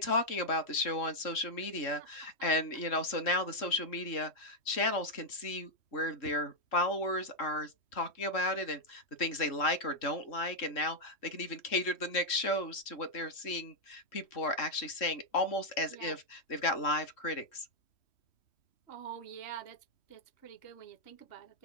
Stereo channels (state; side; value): late; right; 3.1 ms